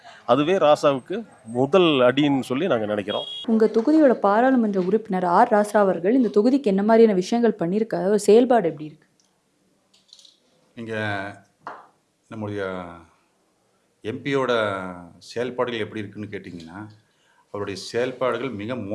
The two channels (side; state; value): both; identical; correlation 1.00